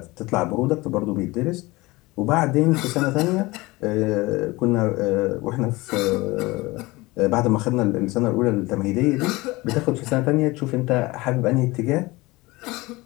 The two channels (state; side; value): quieter; right; 21.6 dB